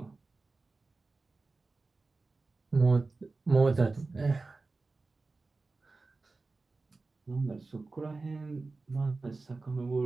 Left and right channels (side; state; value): left; quieter; 3.7 dB